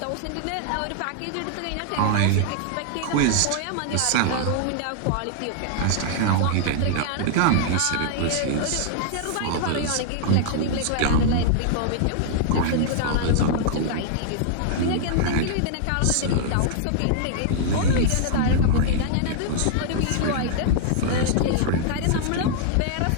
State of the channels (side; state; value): both; different; correlation -0.01